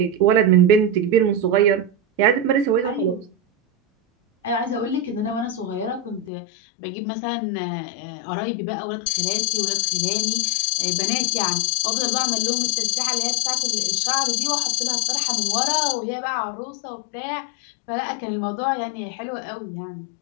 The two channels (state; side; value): drops out; right; at 6.3 s